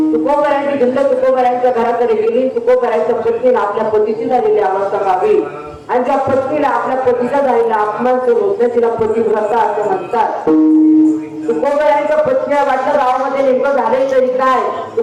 तुकोबारांची भिंड तुकोबारांच्या घराकडे गेली. तुकोबारांच्या पत्नीला आपल्या पतीची झालेली अवस्था पाहावी आणि ज्या पत्नीला आपल्या पतीचा झालेला अपमान करून तिला पतिव्रता असं म्हणतात. तुकोबारांच्या पत्नीला वाटलं गावामध्ये नेमकं झाले तरी काय.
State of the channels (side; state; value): both; identical; correlation 1.00